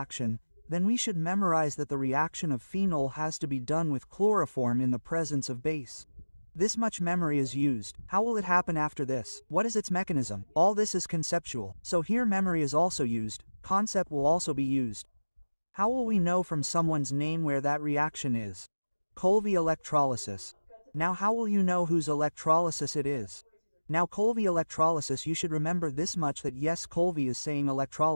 then we should memorize that the reaction of phenol has to be done with chloroform in the presence of base. This much memory is used. How will it happen after this? What is its mechanism? All this is conceptual. So here memory is also used, concept will also be used. How will we know from someone's name where that reaction is? Colby electrolysis. Now how will you know whose electrolysis it is? Now Colby electrolysis, you should remember this much, that yes, Colby is saying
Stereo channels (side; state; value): both; inverted; correlation -1.00